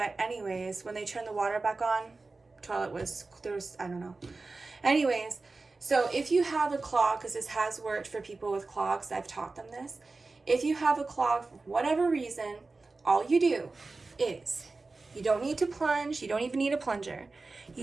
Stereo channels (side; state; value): left; quieter; 3.6 dB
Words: anyways, when they turned the water back on, I don't know. Anyways, so if you have a clog, because this has worked for people with clogs, I've taught them this. If you have a clog for whatever reason, all you do is, you don't need to plunge, you don't even need a plunger.